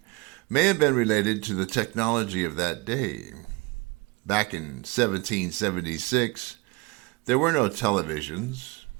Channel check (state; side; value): quieter; left; 25.7 dB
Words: may have been related to the technology of that day. Back in 1776, there were no televisions,